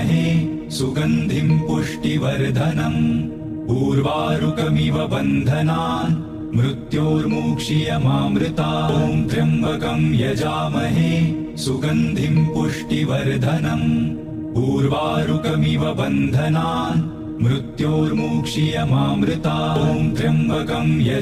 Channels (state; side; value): identical; both; correlation 1.00